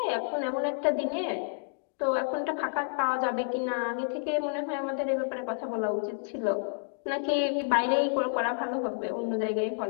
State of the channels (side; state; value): right; silent; digital silence